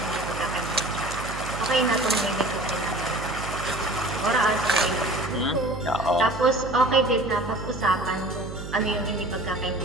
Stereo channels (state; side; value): noise; right; hum, 10 dB below the sound